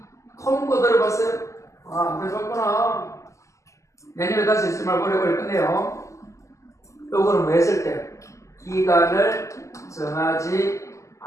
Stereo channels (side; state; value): right; late; 0.15 ms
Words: 통고 들어봤어요? 아, 안 들어봤구나. 내년에 다시 있을 말 오래오래 끝내요. 요거는 뭐 했을 때? 기간을 정하지